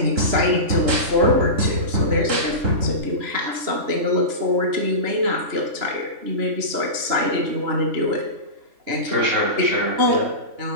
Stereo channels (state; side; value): late; left; 3.5 ms